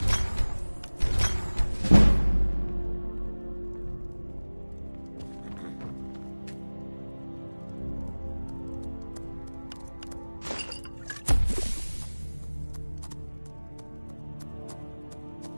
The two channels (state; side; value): inverted; both; correlation -1.00